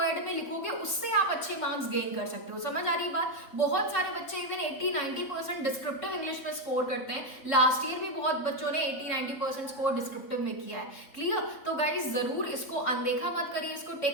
में लिखोगे उससे आप अच्छे मार्क्स गेन कर सकते हो। समझ आ रही बात? बहुत सारे बच्चे इवन 80-90% डिस्क्रिप्टिव इंग्लिश में स्कोर करते हैं। लास्ट ईयर भी बहुत बच्चों ने 80-90% स्कोर डिस्क्रिप्टिव में किया है। क्लियर? तो गाइज जरूर इसको अनदेखा मत करिए, इसको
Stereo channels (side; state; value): right; late; 3.6 ms